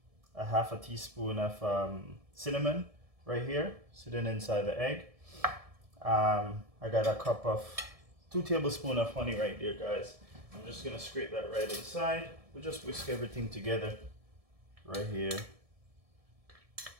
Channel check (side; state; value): left; late; 1.7 ms